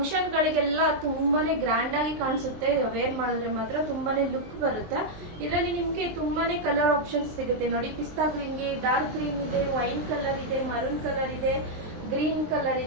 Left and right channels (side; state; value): left; late; 23 ms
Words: ಗಳಿಗೆಲ್ಲ ತುಂಬಾನೇ ಗ್ರ್ಯಾಂಡ್ ಆಗಿ ಕಾಣಿಸುತ್ತೆ. ವೇರ್ ಮಾಡಿದ್ರೆ ಮಾತ್ರ ತುಂಬಾನೇ ಲುಕ್ ಬರುತ್ತೆ. ಇದರಲ್ಲಿ ನಿಮ್ಗೆ ತುಂಬಾನೇ ಕಲರ್ ಆಪ್ಷನ್ಸ್ ಸಿಗುತ್ತೆ. ನೋಡಿ, ಪಿಸ್ತಾ ಗ್ರೀನ್ ಗೆ ಡಾರ್ಕ್ ಗ್ರೀನ್ ಇದೆ, ವೈನ್ ಕಲರ್ ಇದೆ, ಮರೂನ್ ಕಲರ್ ಇದೆ, ಗ್ರೀನ್ ಕಲರ್